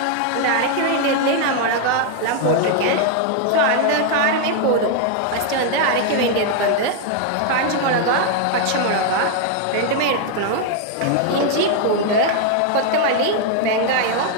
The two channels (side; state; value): both; different; correlation 0.00